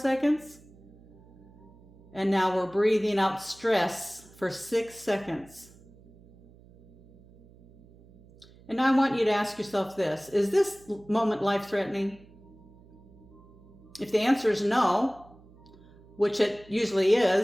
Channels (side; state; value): right; noise; hum, 24 dB below the sound